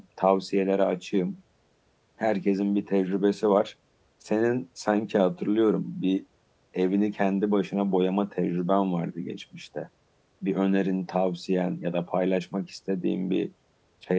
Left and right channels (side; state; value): both; identical; correlation 1.00